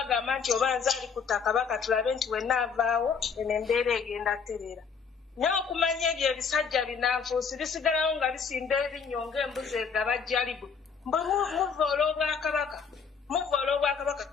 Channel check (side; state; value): right; quieter; 6.0 dB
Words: nti oba nze ali ku ttaka baka tulabe nti wenna avaawo eno embeera egenda terera naye okumanya ebyo ebisajja binanfuusi bisigalawo nga bisimba ebinnyo ng'embuzi egabajjalibu mbwe muva olw'obwakabaka